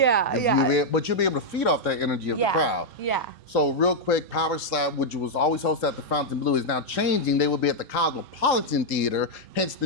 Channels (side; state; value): both; normal; correlation -0.03